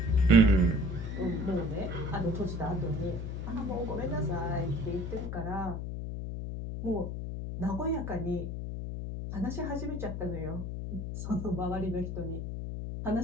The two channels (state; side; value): noise; left; hum, 5 dB below the sound